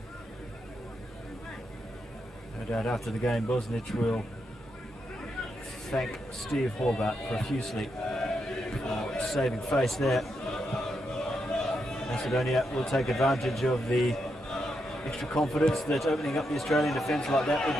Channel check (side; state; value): both; normal; correlation 0.82